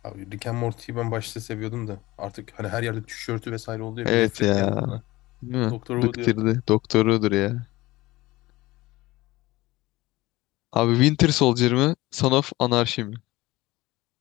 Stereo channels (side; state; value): right; quieter; 19.2 dB